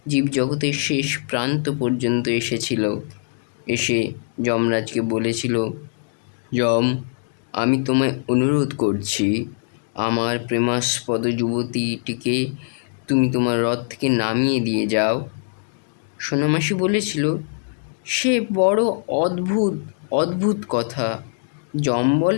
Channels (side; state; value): right; silent; digital silence